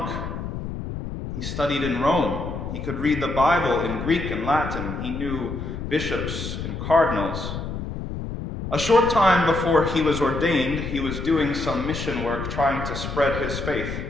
He studied in Rome. He could read the Bible in Greek and Latin. He knew bishops and cardinals. A short time before he was ordained, he was doing some mission work trying to spread his faith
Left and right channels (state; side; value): noise; left; rumble, 6 dB below the sound